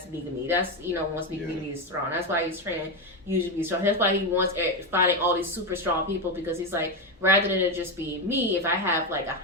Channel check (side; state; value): both; normal; correlation 0.11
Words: Megumi. That's once Megumi is strong. That's why he's training Yuji to be strong. That's why he wants finding all these super strong people, because he's like, rather than it just be me, if I have like